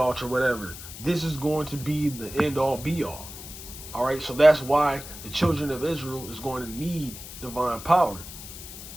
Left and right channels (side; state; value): left; noise; hiss, 13 dB below the sound